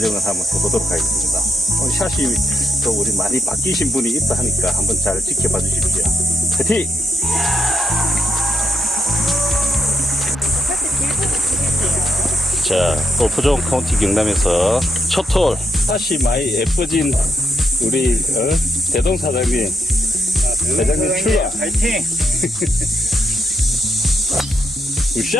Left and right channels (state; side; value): normal; both; correlation 0.79